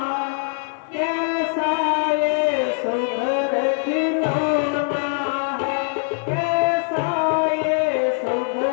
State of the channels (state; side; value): silent; right; 59 dB below the other